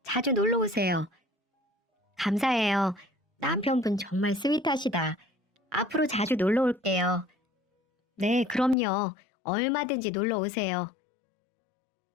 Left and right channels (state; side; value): drops out; right; at 8.8 s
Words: 자주 놀러 오세요. 감사해요. 남편분 정말 스윗하시다. 앞으로 자주 놀러 올게요. 네, 그럼요. 얼마든지 놀러 오세요.